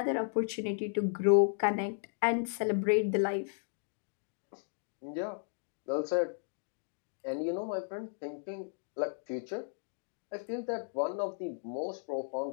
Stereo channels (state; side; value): silent; right; digital silence